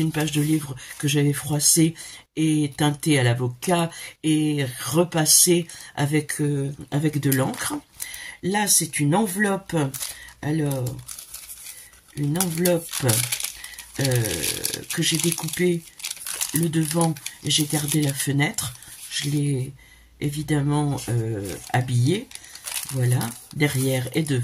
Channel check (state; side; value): identical; both; correlation 1.00